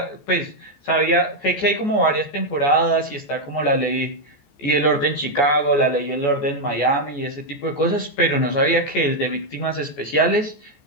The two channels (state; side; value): late; right; 14 ms